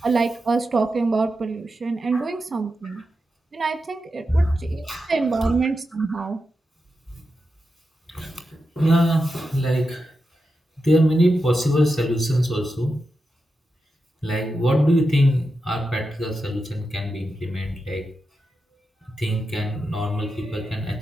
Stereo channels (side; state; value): both; normal; correlation 0.89